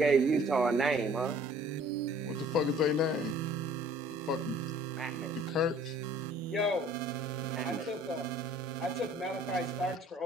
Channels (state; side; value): normal; both; correlation 0.54